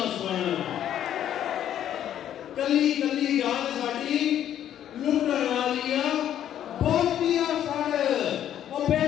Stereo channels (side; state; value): right; quieter; 10.7 dB